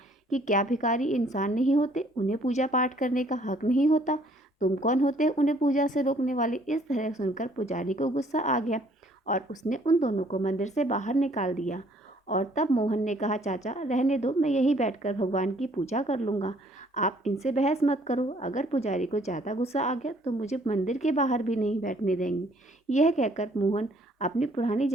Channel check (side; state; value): both; normal; correlation 0.61